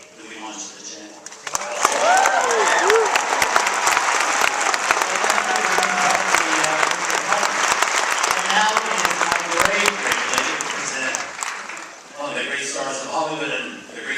that we launched the channel. Stars of Hollywood and the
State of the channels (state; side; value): identical; both; correlation 1.00